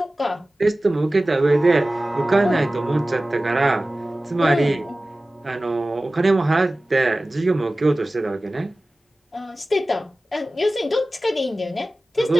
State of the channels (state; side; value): normal; both; correlation 0.97